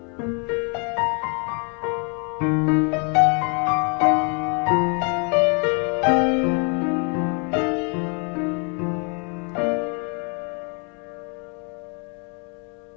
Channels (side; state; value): right; quieter; 36.7 dB